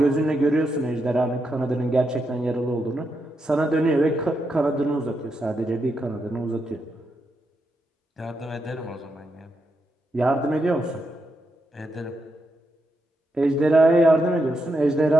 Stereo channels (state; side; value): normal; both; correlation 0.83